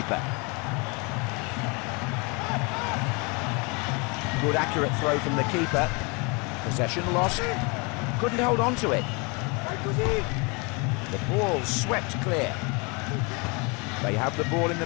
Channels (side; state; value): right; quieter; 30.5 dB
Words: Good accurate throw from the keeper. Possession lost. Couldn't hold on to it. The ball swept clear. They have the ball in the